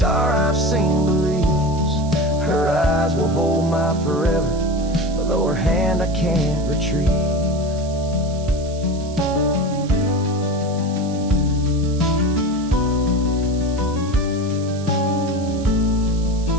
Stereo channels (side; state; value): right; noise; hiss, 19 dB below the sound